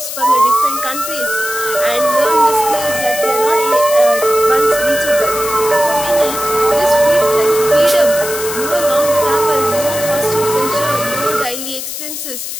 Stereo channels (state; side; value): noise; left; hiss, 7 dB below the sound